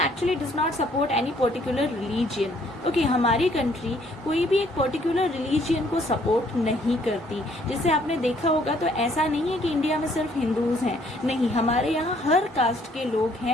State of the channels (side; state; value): both; normal; correlation 0.64